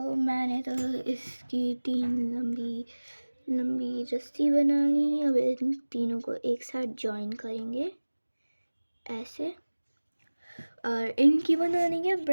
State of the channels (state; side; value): inverted; both; correlation -1.00